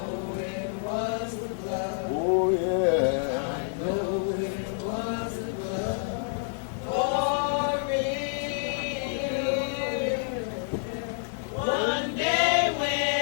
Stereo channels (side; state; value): right; silent; 59 dB below the other